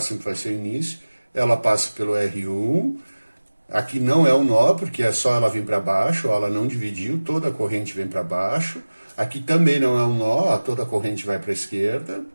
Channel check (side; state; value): both; inverted; correlation -1.00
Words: vai ser o início, ela passa pelo R1, aqui não é um nó, porque é só ela vir para baixo, ó, ela não dividiu, toda a corrente vem para baixo, aqui também não é um nó, ó, toda a corrente vai para a esquerda,